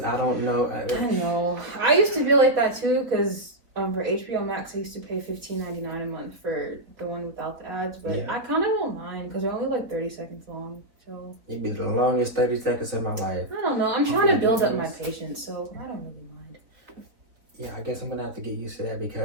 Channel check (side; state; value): left; late; 3.9 ms